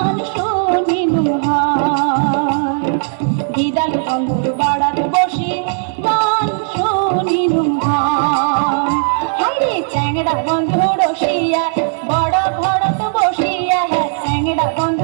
শুনিলুম হয়, গিদাল বন্ধুর বাড়ার বসি গান শুনিলুম হয়। হাইরে চ্যাংড়া বন্ধু রসিয়া বড় ভরত বসিয়া, চ্যাংড়া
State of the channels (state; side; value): silent; left; digital silence